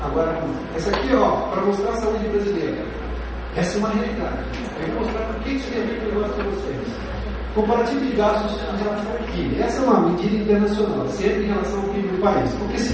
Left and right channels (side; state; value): both; identical; correlation 1.00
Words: Agora vamos lá. Essa aqui, para mostrar a saúde brasileira. Essa é uma realidade. Eu vou mostrar por que isso tem a ver com o negócio para vocês. Comparativo de gastos em relação ao PIB. Essa é uma medida internacional, sempre em relação ao PIB do país. Porque